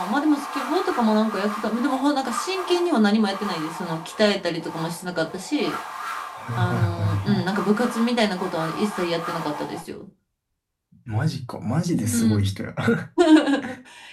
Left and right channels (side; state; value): both; identical; correlation 1.00